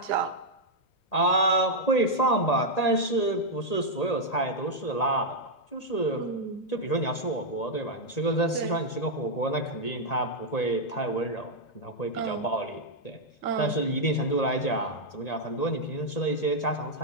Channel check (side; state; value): right; late; 1.8 ms